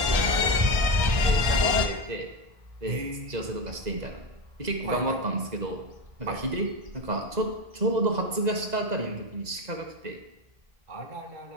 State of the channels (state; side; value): late; left; 2.0 ms